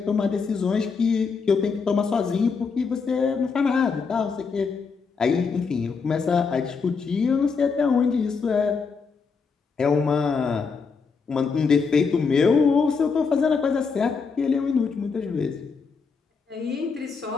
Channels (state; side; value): quieter; right; 5.2 dB